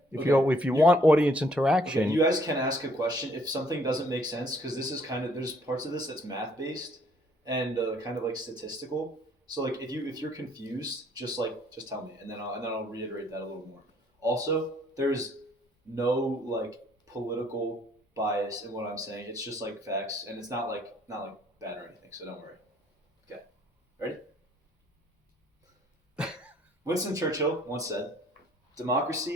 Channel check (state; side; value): normal; both; correlation 0.63